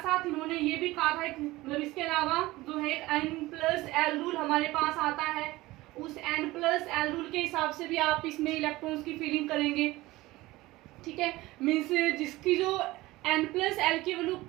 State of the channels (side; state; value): left; quieter; 19.0 dB